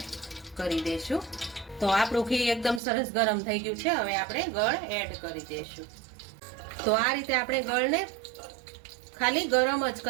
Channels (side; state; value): left; drops out; at 2.8 s